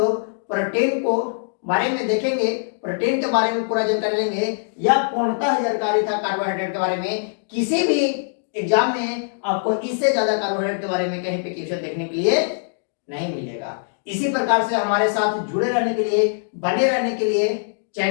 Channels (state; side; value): silent; right; digital silence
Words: प्रोटीन को बारे में देखेंगे, प्रोटीन के बारे में पूरा जानकारी लेंगे। यह पूर्णतः जानकारी था कार्बोहाइड्रेट के बारे में। किसी भी एग्जाम में आपको इससे ज्यादा कार्बोहाइड्रेट के बारे में कहीं पे क्वेश्चन देखने के लिए नहीं मिलेगा। इसी प्रकार से हमारे साथ जुड़े रहने के लिए, बने रहने के लिए